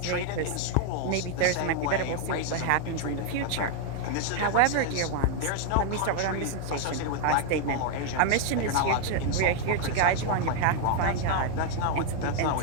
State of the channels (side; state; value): both; different; correlation 0.00